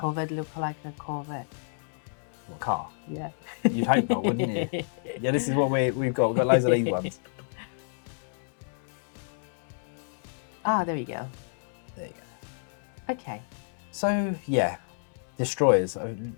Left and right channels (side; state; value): right; silent; digital silence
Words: look like a Corvette? What car? Yeah. You'd hope not, wouldn't you? Yeah, this is what we've got. We've got loads of these ones. Ah, there we go. There you go. Okay. So yeah, destroyers.